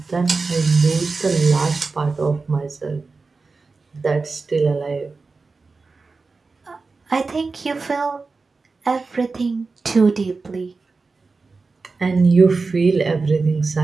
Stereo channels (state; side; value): quieter; left; 4.1 dB